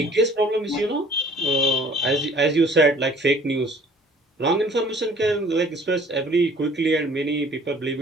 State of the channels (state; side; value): normal; both; correlation 0.54